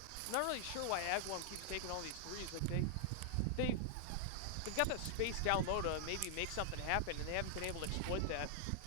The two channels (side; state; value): both; different; correlation -0.01